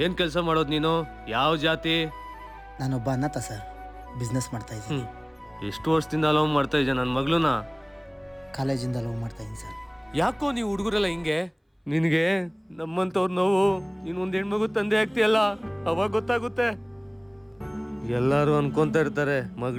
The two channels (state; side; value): identical; both; correlation 1.00